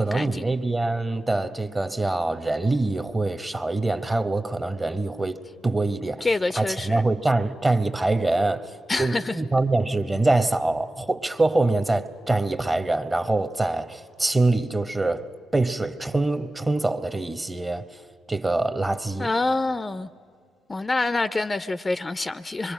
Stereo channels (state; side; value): normal; both; correlation 0.95